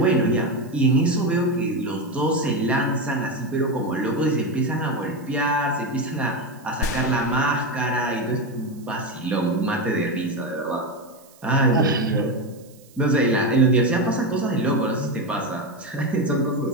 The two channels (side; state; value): right; noise; hiss, 27 dB below the sound